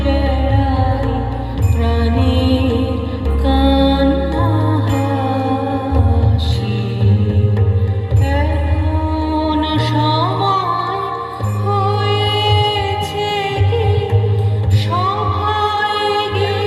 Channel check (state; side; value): identical; both; correlation 1.00